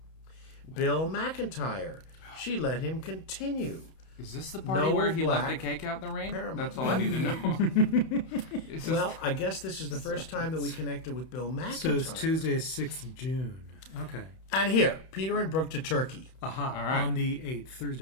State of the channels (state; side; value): late; right; 31 ms